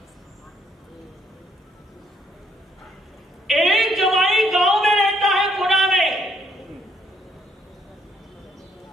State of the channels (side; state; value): both; normal; correlation 0.69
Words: एक जमाई गांव में रहता है, पुणे में।